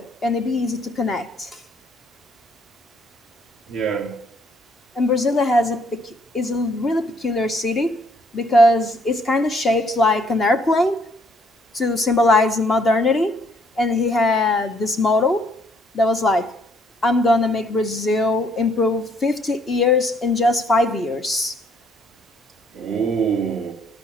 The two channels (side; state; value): both; normal; correlation 0.66